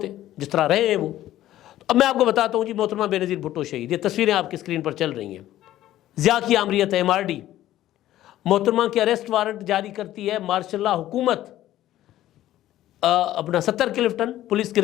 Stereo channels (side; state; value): right; quieter; 13.7 dB